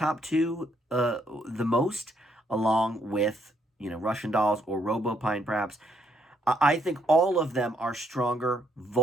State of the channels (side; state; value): both; normal; correlation 0.72